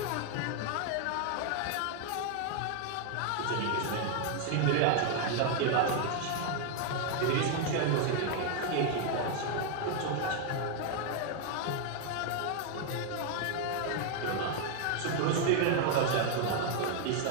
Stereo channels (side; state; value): both; different; correlation 0.00